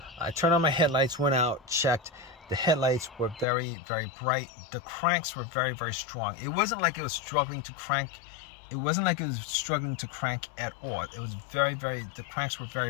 I turned on my headlights, went out, checked. The headlights were very, very bright. The cranks were very, very strong. It wasn't like it was struggling to crank. It wasn't like it was struggling to crank at all. It was very, very, the cranks were very,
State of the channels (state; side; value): drops out; right; at 3.5 s